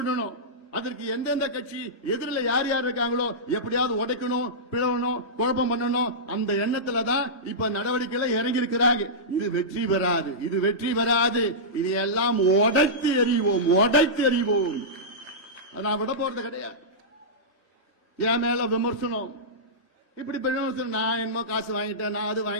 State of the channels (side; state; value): both; normal; correlation -0.15